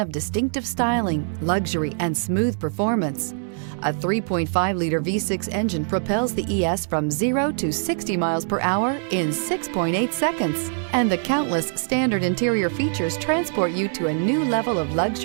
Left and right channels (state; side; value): silent; left; digital silence